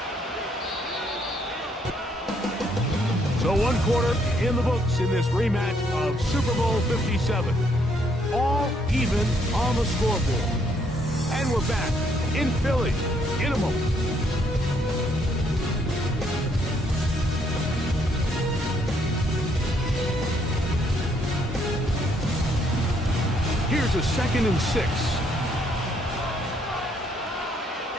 So 1 quarter in the books in this rematch of Super Bowl 57. All even on the scoreboard. And we're back in Philly in a moment. Here's a 2nd and 6.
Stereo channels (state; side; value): normal; both; correlation 0.70